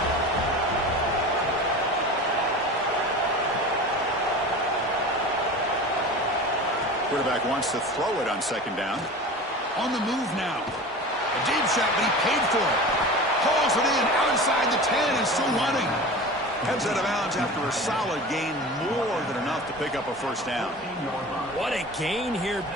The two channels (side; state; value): both; normal; correlation 0.34